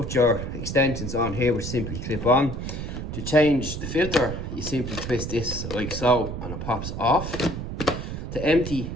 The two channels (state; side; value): noise; right; rumble, 6 dB below the sound